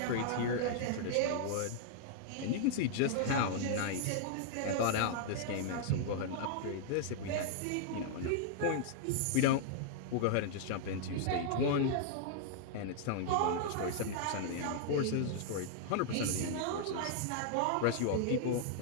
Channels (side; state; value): both; different; correlation -0.01